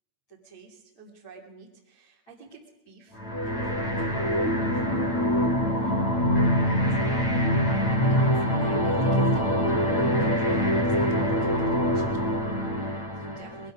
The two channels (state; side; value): late; right; 8.9 ms